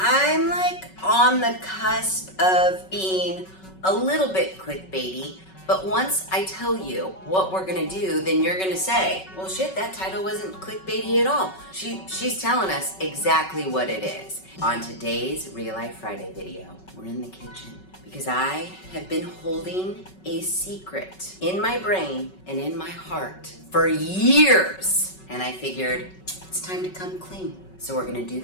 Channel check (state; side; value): late; right; 5.3 ms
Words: like on the cusp of being a little bit clickbaity. But once I tell you what we're gonna do, then you're gonna say, well shit, that title wasn't clickbaity at all. She's telling us exactly what it is. On today's Real Life Friday video, we're in the kitchen because I have been holding a secret in my brain and in my heart for years. And I figured it's time to come clean. So we're gonna do